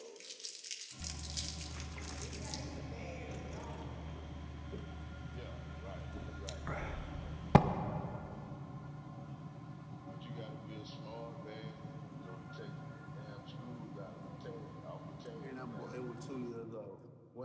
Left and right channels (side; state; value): both; identical; correlation 1.00